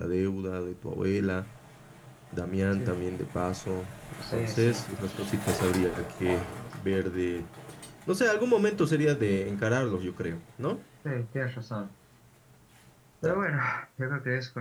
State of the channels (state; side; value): identical; both; correlation 1.00